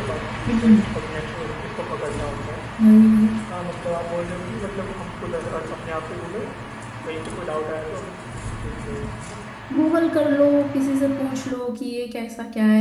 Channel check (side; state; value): both; identical; correlation 1.00